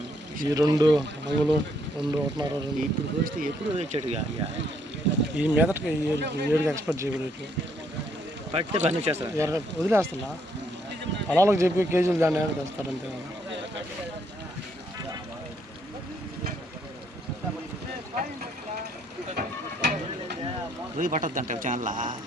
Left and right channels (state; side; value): normal; both; correlation 0.71